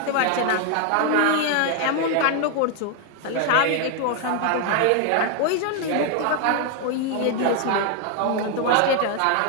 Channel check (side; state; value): both; different; correlation 0.00